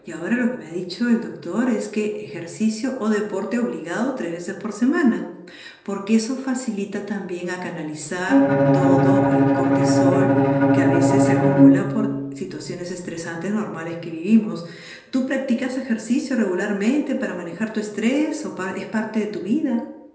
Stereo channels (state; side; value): identical; both; correlation 1.00